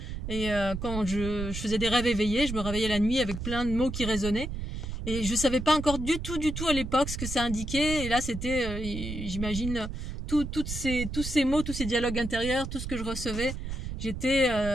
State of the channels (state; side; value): noise; right; rumble, 6 dB below the sound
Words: Et quand je faisais des rêves éveillés, je me réveillais la nuit avec plein de mots qui résonnaient. Et je savais pas encore du tout à l'époque ce que ça indiquait. Et là, c'était, j'imagine, tous ces mots, tous ces dialogues intérieurs, tout ce que je recevais. J'étais,